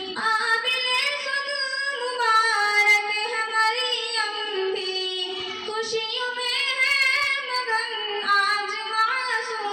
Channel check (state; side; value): identical; both; correlation 1.00